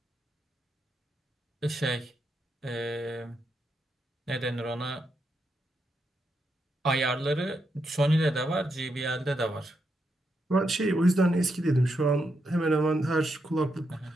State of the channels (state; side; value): normal; both; correlation 0.82